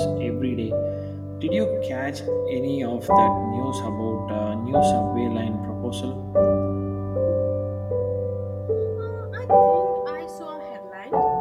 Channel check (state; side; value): identical; both; correlation 1.00